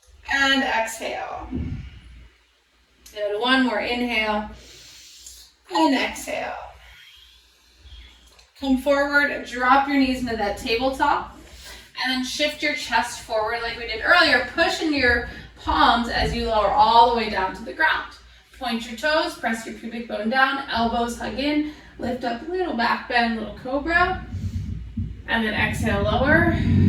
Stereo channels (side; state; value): both; identical; correlation 1.00